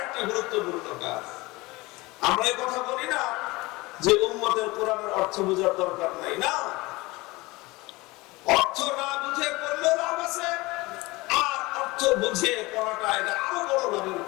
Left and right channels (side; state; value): right; quieter; 22.1 dB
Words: গুরুত্বপূর্ণ কাজ। আমরা এই কথা বলি না যে উম্মতের কোরআনের অর্থ বোঝার দরকার নাই, না, অর্থ না বুঝে পড়লে লাভ আছে, আর অর্থ বুঝে পড়াটা এটা আরো বড় লাভের